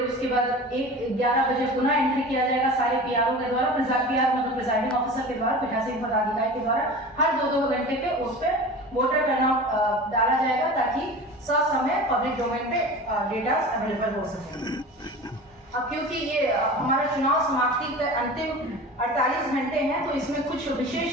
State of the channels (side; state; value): both; normal; correlation 0.35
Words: उसके बाद 11 बजे पुनः एंट्री किया जाएगा सारे पीआरओ के द्वारा, मतलब प्रिजाइडिंग ऑफिसर के द्वारा, पीठासीन पदाधिकारी के द्वारा हर 2-2 घंटे पे उस पर वोटर टर्नआउट डाला जाएगा ताकि ससमय पब्लिक डोमेन पे डेटा अवेलेबल हो सके। अब क्योंकि ये हमारा चुनाव समाप्ति के अंतिम 48 घंटे हैं तो इसमें कुछ